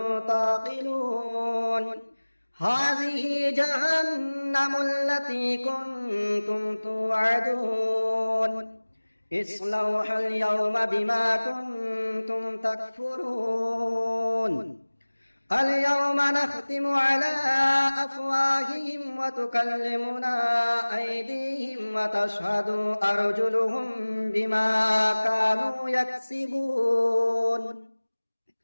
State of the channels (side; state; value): both; inverted; correlation -1.00